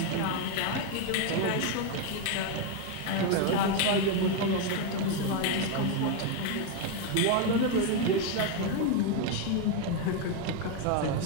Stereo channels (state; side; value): different; both; correlation 0.01